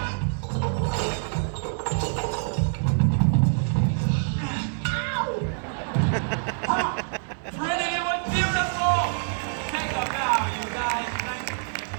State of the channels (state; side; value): silent; left; digital silence